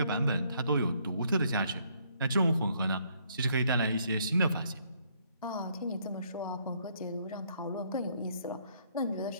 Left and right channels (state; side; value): inverted; both; correlation -0.68